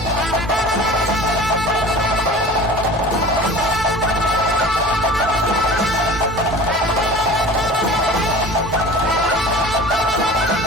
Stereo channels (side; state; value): both; normal; correlation 0.39